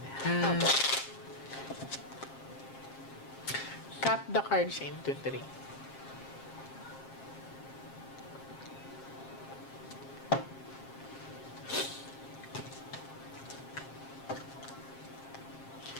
Cut the cards into 3.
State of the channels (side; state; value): right; late; 7.5 ms